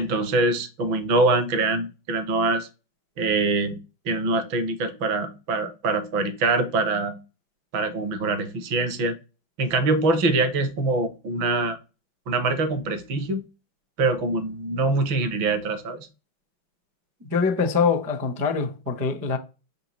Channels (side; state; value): left; late; 6.0 ms